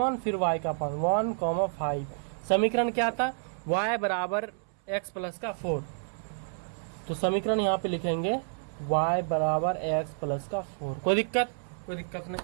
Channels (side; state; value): left; silent; 58 dB below the other